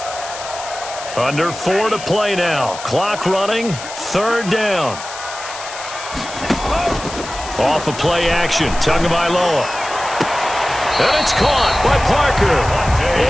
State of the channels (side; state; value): left; noise; hiss, 11 dB below the sound